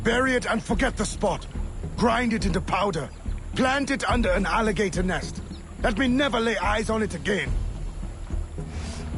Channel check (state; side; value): identical; both; correlation 1.00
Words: Bury it and forget the spot. Grind it into powder. Plant it under an alligator nest. Let me never lay eyes on it again.